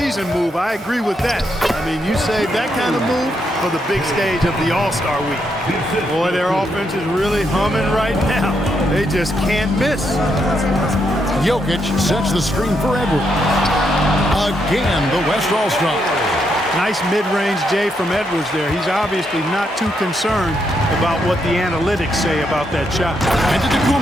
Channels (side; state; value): both; normal; correlation 0.79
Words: move. I agree with that. I mean, you save that kind of move for the big stage of the All-Star Week. Boy, their offense is really humming right now. They just can't miss. Jokic sets the screen for Edwards. Again, the West All-Star. Nice mid-range J from Edwards there. He's obviously not too concerned about what the analytics say about that shot. And to